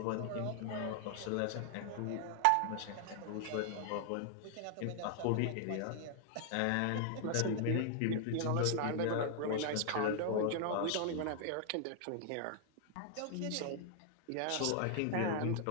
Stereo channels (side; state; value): both; different; correlation 0.00